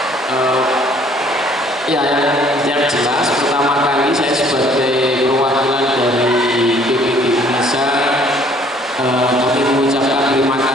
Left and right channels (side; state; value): both; normal; correlation 0.59